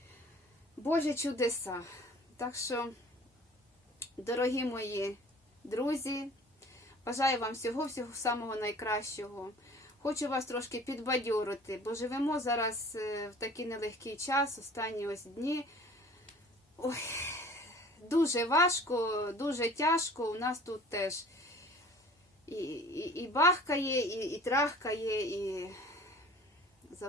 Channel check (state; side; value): normal; both; correlation 0.47